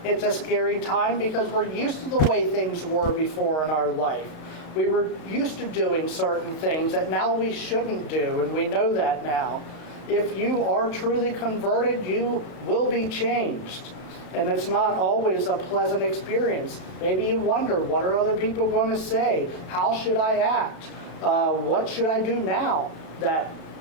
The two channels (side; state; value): right; late; 32 ms